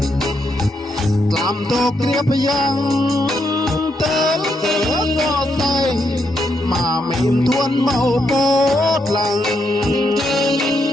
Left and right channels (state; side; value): normal; both; correlation 0.79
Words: làm tục tiếp yang tên cửa cọ say mà mình thuần màu bốt lằng